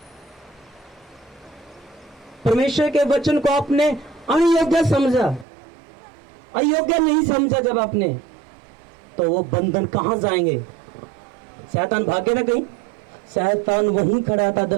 परमेश्वर के वचन को आपने अयोग्य समझा, अयोग्य नहीं समझा। जब आपने, तो वो बंधन कहां जाएंगे? शैतान भागे ना कहीं। शैतान वहीं खड़ा था,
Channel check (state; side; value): drops out; left; at 5.5 s